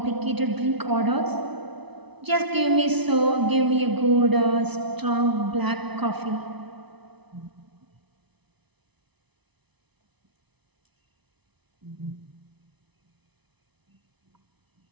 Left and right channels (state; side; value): late; left; 0.99 ms